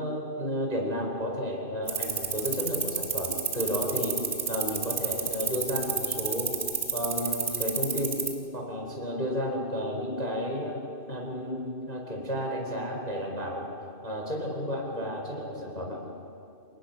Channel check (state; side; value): late; right; 2.6 ms